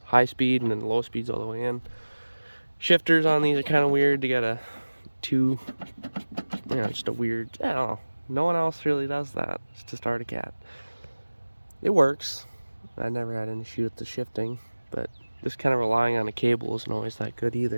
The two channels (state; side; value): inverted; both; correlation -1.00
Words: high speed, and then low speed's all the way in. Shifters on these are kind of weird. They got a just a weird, I don't know. No one else really does that. It's just Arctic Cat. It works. I never had an issue with the shifting, but just kind of relying on a cable isn't always that good